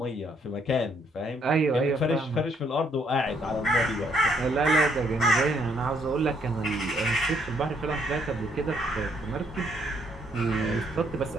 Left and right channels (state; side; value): normal; both; correlation 0.69